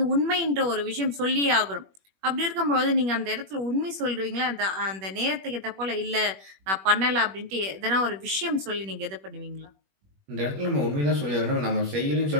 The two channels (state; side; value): late; left; 21 ms